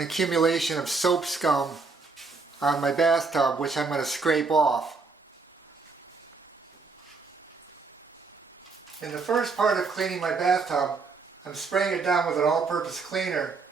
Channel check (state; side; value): quieter; left; 4.3 dB